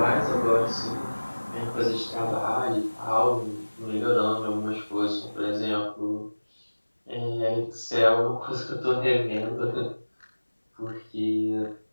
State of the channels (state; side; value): inverted; both; correlation -1.00